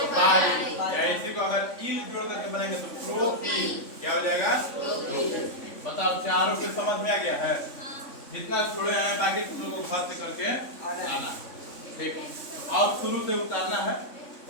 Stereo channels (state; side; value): late; right; 3.5 ms